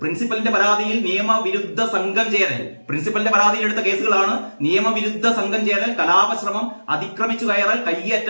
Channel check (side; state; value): both; inverted; correlation -1.00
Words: പ്രിൻസിപ്പലിന്റെ പരാതിയിൽ നിയമവിരുദ്ധ സംഘം ചേരൽ, പ്രിൻസിപ്പലിന്റെ പരാതിയിൽ എടുത്ത കേസുകളാണ് നിയമവിരുദ്ധ സംഘം ചേരൽ, കലാപശ്രമം, അതിക്രമിച്ചു കയറൽ,